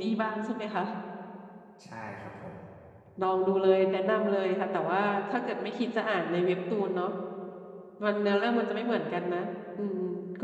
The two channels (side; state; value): both; identical; correlation 1.00